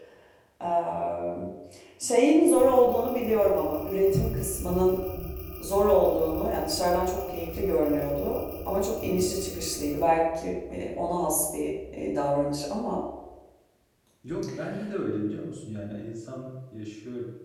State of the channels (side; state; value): both; identical; correlation 1.00